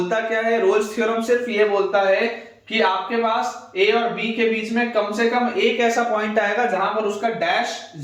क्या है, रोल्स थ्योरम सिर्फ ये बोलता है कि आपके पास a और b के बीच में कम से कम एक ऐसा पॉइंट आएगा जहां पर उसका डैश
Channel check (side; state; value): both; identical; correlation 1.00